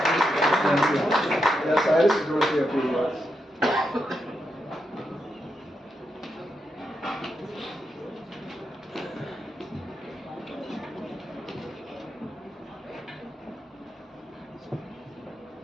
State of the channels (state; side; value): normal; both; correlation 0.84